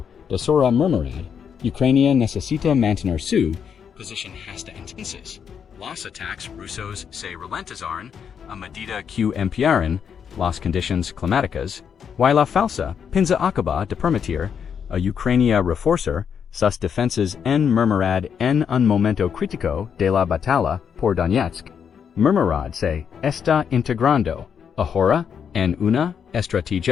de sora murmurad. Ucrania necesita mantener su posición hasta entonces. Los ataques rusos se ralentizaron a medida que empeoran las condiciones climáticas, y la falsa pinza acaba de permitir a Ucrania reforzar sus defensas en murmurad en un momento crítico de la batalla por Donetsk. Murmurad se está integrando ahora en una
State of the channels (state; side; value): quieter; right; 7.4 dB